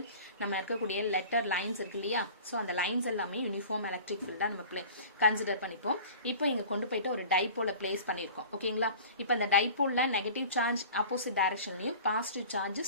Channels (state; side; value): inverted; both; correlation -0.41